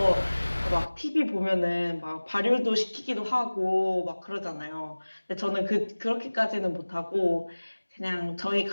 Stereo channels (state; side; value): inverted; both; correlation -1.00